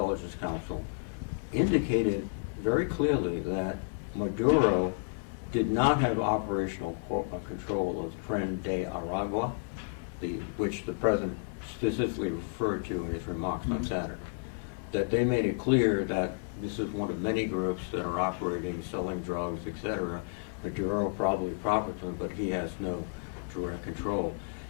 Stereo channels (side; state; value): right; silent; digital silence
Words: Council, indicated very clearly that Maduro did not have operational control of Tren de Aragua, which the president specifically referred to in his remarks on Saturday. That they made it clear that this is one of many groups that are operating, selling drugs, etc. Maduro probably profits from it, but he has no direct control.